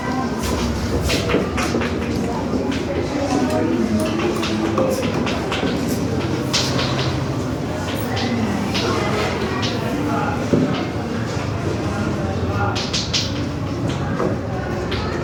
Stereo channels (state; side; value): identical; both; correlation 1.00